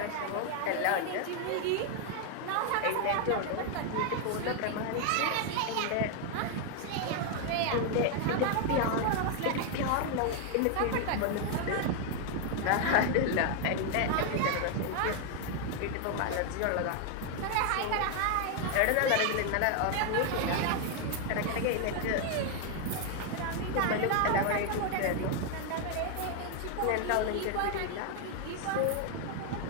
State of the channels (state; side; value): different; both; correlation 0.00